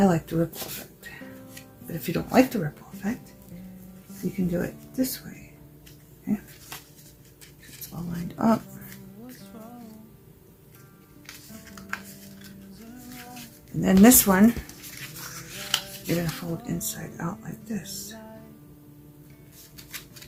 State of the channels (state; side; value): identical; both; correlation 1.00